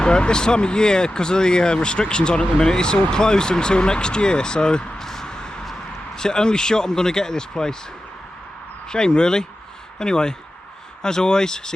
But this time of year, because of the restrictions on at the minute, it's all closed until next year, so it's the only shot I'm going to get at this place. Shame really. Anyway, as always,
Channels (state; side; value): normal; both; correlation 0.93